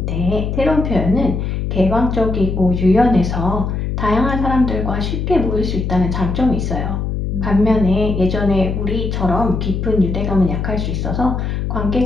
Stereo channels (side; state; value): left; noise; hum, 2 dB below the sound